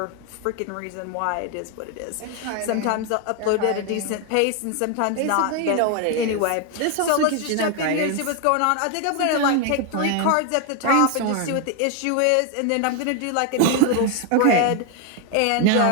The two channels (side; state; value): both; different; correlation 0.01